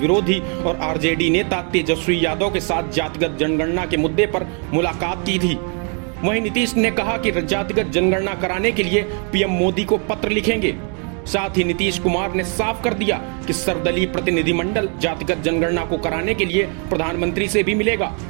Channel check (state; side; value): quieter; left; 39.3 dB